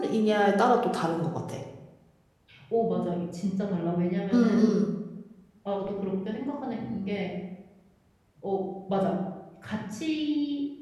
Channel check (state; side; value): identical; both; correlation 1.00